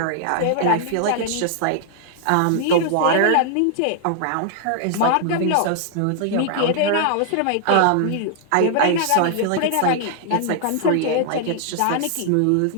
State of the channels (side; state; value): both; different; correlation -0.01